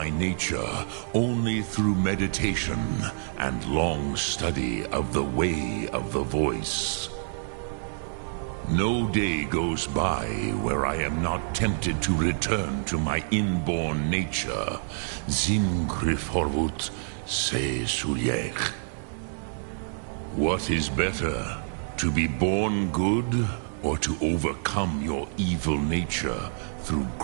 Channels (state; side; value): silent; left; digital silence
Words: nature only through meditation and long study of the way of the voice. No day goes by where I am not tempted to return to my inborn nature. Zimgrifhorvut se sulyech. What is better, to be born good or to overcome your evil nature through